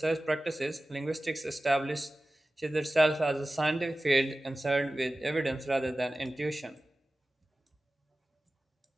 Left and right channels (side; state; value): both; normal; correlation 0.96